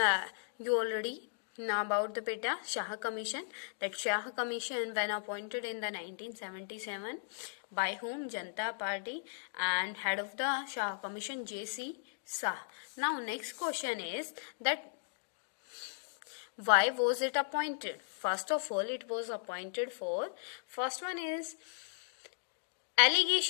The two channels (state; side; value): silent; right; digital silence